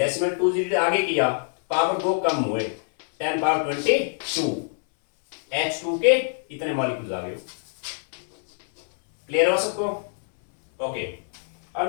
2 जीरो आगे किया, पावर 2 कम हुए 10^22 H2 के इतने मॉलिक्यूल्स आ गए। क्लियर हो सबको? ओके, अब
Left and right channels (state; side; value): silent; right; 61 dB below the other